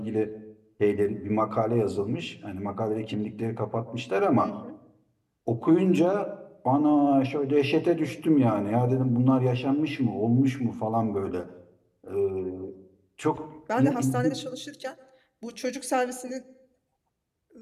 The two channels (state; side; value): identical; both; correlation 1.00